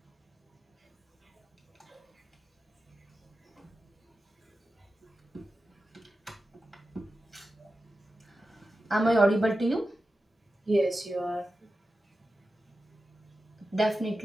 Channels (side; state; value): both; normal; correlation 0.93